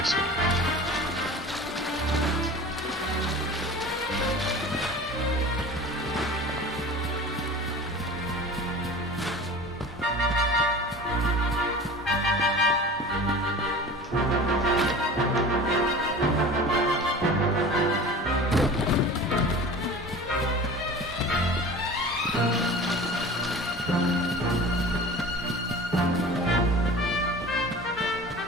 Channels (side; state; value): both; normal; correlation 0.38